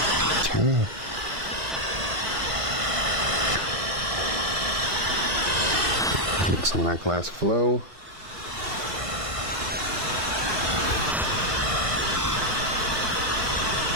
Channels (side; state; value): left; late; 1.7 ms